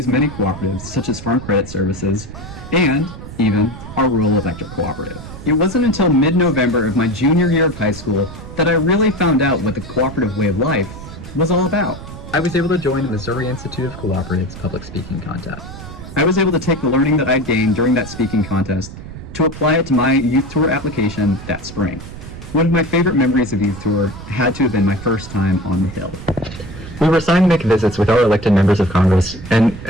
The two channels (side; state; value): right; noise; rumble, 13 dB below the sound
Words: many cooperatives, such as Farm Credit Services, and even our rural electric cooperative. It wasn't until mid-November of my junior year of high school that I really found out what the cooperative way of life was all about. I was able to join the Missouri Institute of Cooperatives public speaking contest. I was able to take the learning that I gained during that speaking contest to apply it to my youth tour application that spring. One of my favorite memories of youth tour had to have been my first time on the Hill. We were assigned to make visits with our elected members of Congress, and